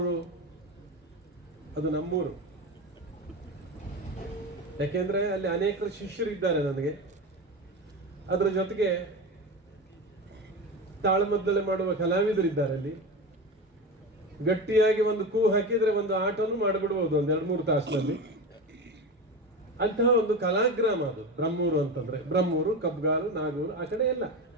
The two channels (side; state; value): both; normal; correlation 0.24